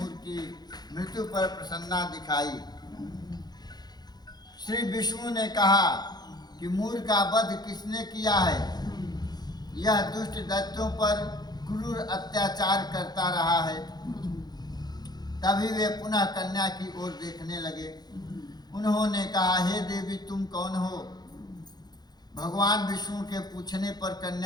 की मृत्यु पर प्रसन्नता दिखाई। श्री विष्णु ने कहा कि मूर का वध किसने किया है? यह दुष्ट दैत्यों पर क्रूर अत्याचार करता रहा है। तभी वे पुनः कन्या की ओर देखने लगे। उन्होंने कहा, हे देवी, तुम कौन हो? भगवान विष्णु के पूछने पर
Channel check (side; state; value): right; late; 0.20 ms